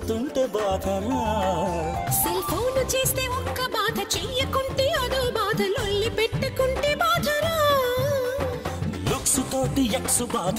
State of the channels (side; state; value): both; identical; correlation 1.00